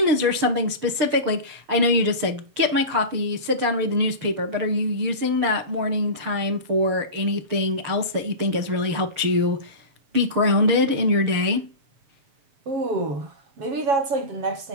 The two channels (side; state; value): left; late; 6.7 ms